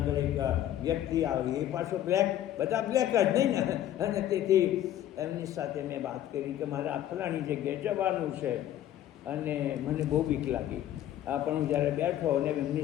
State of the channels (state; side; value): quieter; right; 12.0 dB